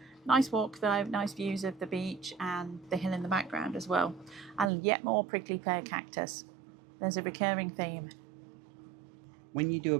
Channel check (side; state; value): left; drops out; at 4.7 s